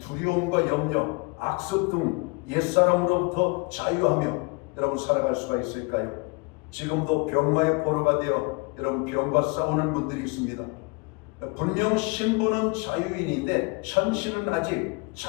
염려, 악습 등 옛사람으로부터 자유하며 여러분 살아갈 수가 있을까요? 지금도 병마의 포로가 되어 여러분 병과 싸우는 분들이 있습니다. 분명 신분은 자유인인데 현실은 아직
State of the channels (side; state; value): right; quieter; 30.0 dB